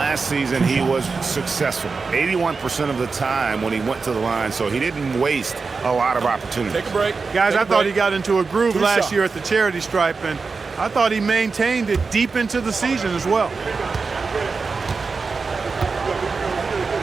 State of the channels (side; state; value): left; quieter; 4.6 dB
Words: season, he was successful 81% of the time when he went to the line, so he didn't waste a lot of opportunities. Take a break. Guys, I thought he got into a groove last year at the charity stripe, and I thought he maintained it deep into the season as well.